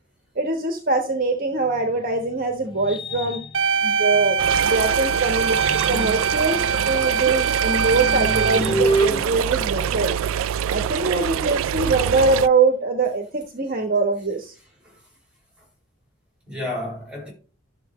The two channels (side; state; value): left; quieter; 4.3 dB